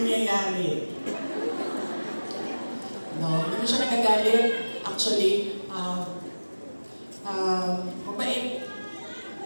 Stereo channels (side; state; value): both; inverted; correlation -1.00